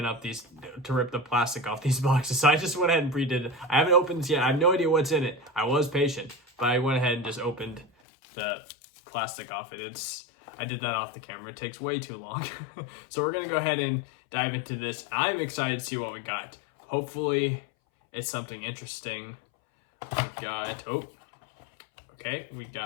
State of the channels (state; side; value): drops out; right; at 7.9 s